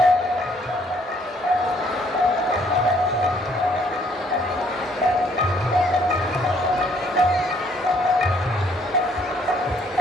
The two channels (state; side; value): normal; both; correlation 0.65